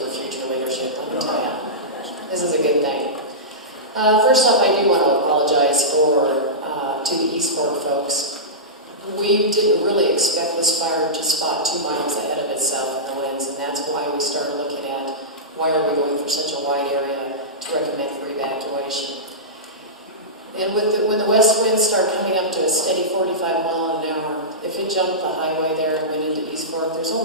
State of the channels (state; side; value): normal; both; correlation -0.16